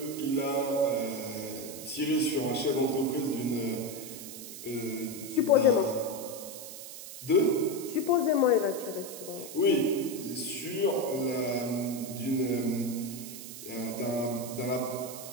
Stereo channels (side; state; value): right; noise; hiss, 11 dB below the sound